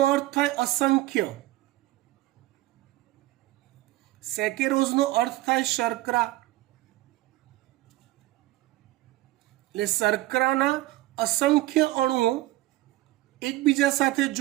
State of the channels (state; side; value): quieter; left; 17.7 dB